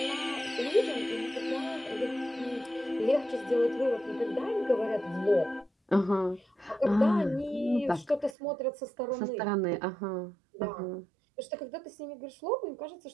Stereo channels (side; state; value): left; drops out; at 8.3 s